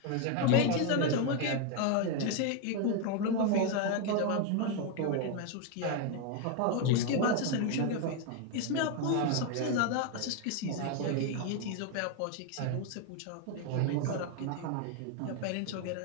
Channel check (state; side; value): different; both; correlation 0.01